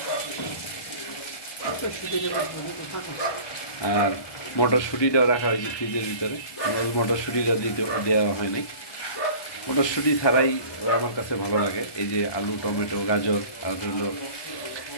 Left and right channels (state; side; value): late; right; 1.2 ms